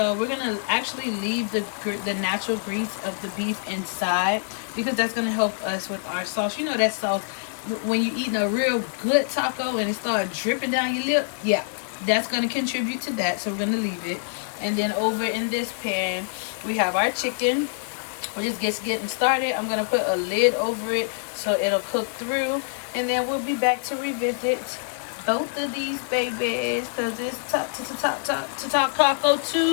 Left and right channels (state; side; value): silent; right; digital silence